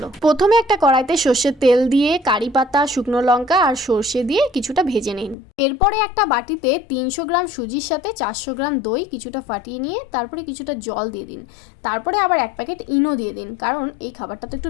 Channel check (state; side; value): drops out; right; at 5.4 s